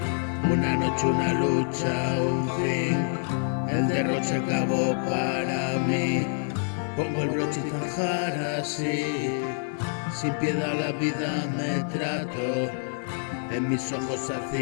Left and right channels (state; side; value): silent; right; 60 dB below the other